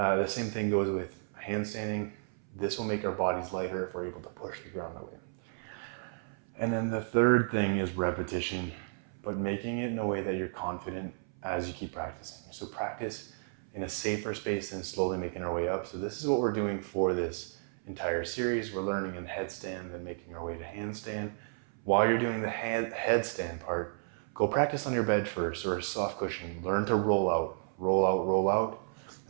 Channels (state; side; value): silent; left; 56 dB below the other